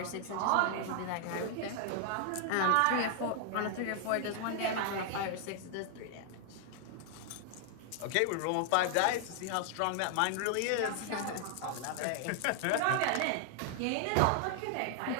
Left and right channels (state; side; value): different; both; correlation 0.00